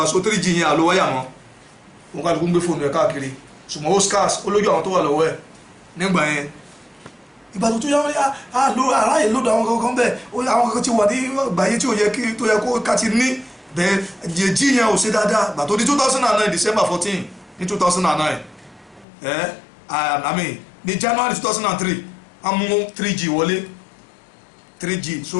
so 3G yẹn àlọ́ wáyà mọ́ wọ́n kálukú ń gbé fóònù ẹ̀ káàkiri ṣùgbọ́n ó scarce ó lójú àwọn tó wà lọ́wọ́ ẹ̀ nígbà yẹn ìgbà tó yá wọ́n aráyè lódò àwọn kankan bẹ́ẹ̀ àwọn kankan ti wà ní gbàyé tí ó yẹ kó ká ti ní bẹ́ẹ̀ jẹ́jì yẹn ò ṣe dáadáa ìgbà tó di 2009 December 14 ní 2009 I mean ní January 2003 a mú 3G wọlé 3G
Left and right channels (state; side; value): drops out; right; at 19.1 s